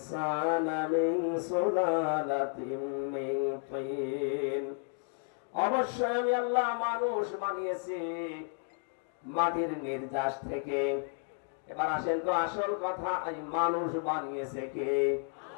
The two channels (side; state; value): right; silent; 56 dB below the other